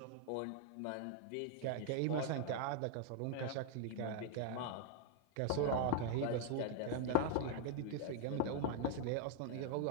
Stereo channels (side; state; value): both; different; correlation 0.00